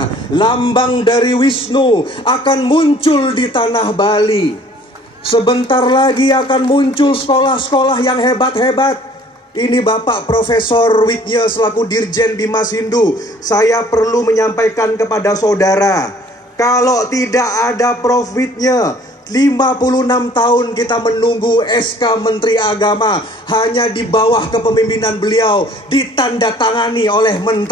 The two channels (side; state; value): both; normal; correlation 0.54